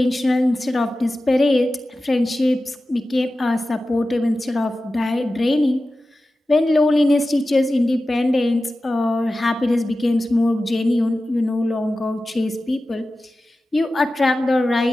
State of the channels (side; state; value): both; normal; correlation 0.95